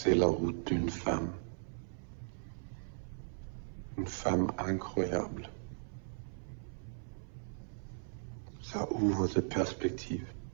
la route d'une femme. Une femme incroyable. Ça ouvre des perspectives.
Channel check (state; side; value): silent; left; 53 dB below the other